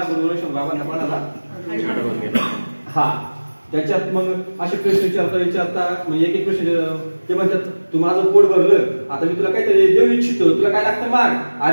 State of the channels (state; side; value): inverted; both; correlation -1.00